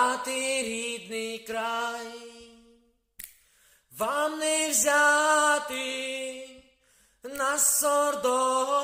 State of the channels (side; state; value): both; identical; correlation 1.00